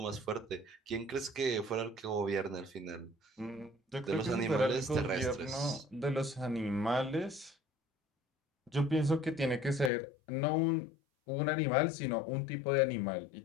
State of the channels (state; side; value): drops out; right; at 9.9 s